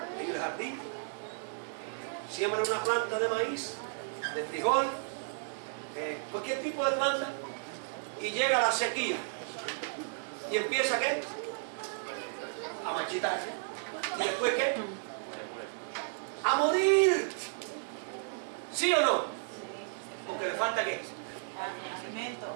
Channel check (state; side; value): silent; left; 55 dB below the other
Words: en el jardín, siembra una planta de maíz, de frijol, cualquier tipo de planta, y llega la sequía y empieza ¿qué? A marchitarse. ¿Y después qué? A morir. ¿Sí o no? Porque le falta ¿qué? Alimento.